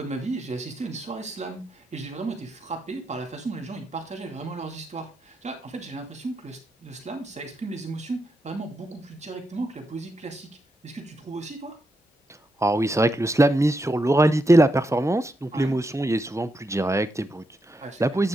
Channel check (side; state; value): both; normal; correlation 0.83